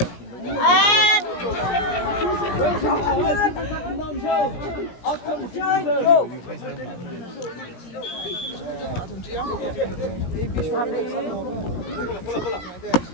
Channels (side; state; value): right; late; 17 ms